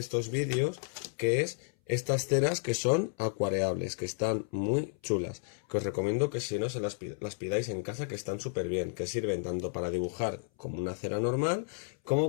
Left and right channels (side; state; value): right; silent; 56 dB below the other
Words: vídeos, que es estas ceras que son acuareables, que están muy chulas, que os recomiendo que si no se las pidáis en casa, que están súper bien, que sirven tanto para dibujar como una cera normal,